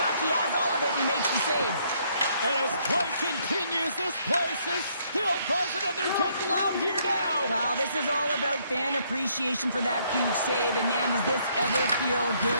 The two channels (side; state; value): both; inverted; correlation -0.69